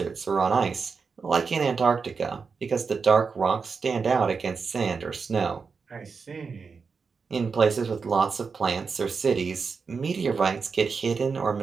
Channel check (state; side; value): quieter; left; 5.2 dB